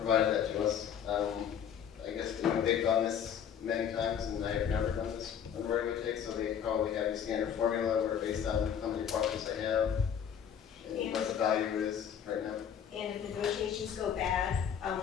that to us. I guess, they've done this many times, and I have never done this on the right-of-way take, so they probably have a standard formula where based on how many parcels they have, and what the value is right now. And if negotiations go bad,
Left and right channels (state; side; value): quieter; right; 8.4 dB